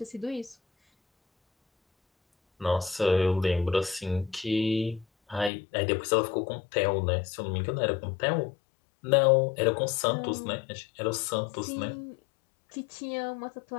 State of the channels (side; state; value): right; drops out; at 5.5 s